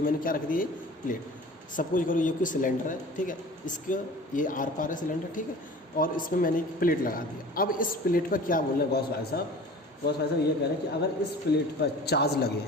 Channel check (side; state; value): both; normal; correlation 0.42